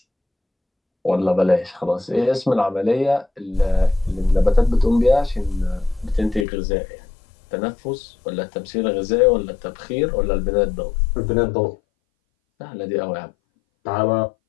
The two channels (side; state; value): right; drops out; at 6.5 s